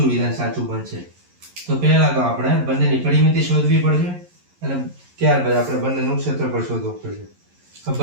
વિધાન સાચું બનશે? તો પહેલા તો આપણે બંનેની પરિમિતિ શોધવી પડશે અને ત્યારબાદ આપણે બંનેનું ક્ષેત્રફળ શોધવું પડશે. તો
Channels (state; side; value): late; left; 11 ms